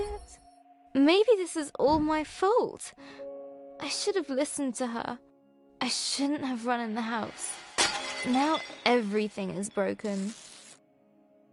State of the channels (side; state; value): both; identical; correlation 1.00